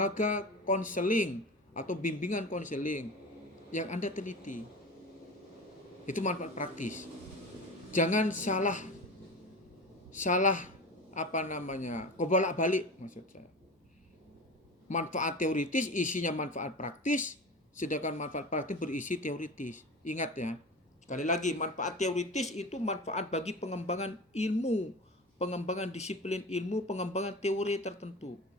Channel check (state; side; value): normal; both; correlation 0.31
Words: konseling atau bimbingan konseling yang Anda teliti. Itu manfaat praktis. Jangan salah kebolak-balik maksud saya. Manfaat teoritis isinya manfaat praktis, sedangkan manfaat praktis berisi teoritis. Ingat ya. Sekali lagi, manfaat teoritis itu manfaat bagi pengembangan ilmu, pengembangan disiplin ilmu, pengembangan teori tertentu.